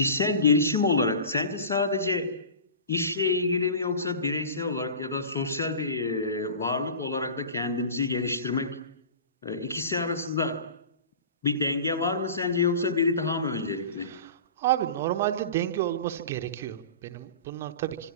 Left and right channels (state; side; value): inverted; both; correlation -0.35